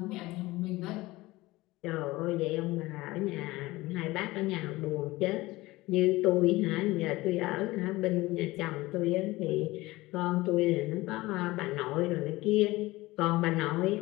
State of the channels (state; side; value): quieter; right; 19.7 dB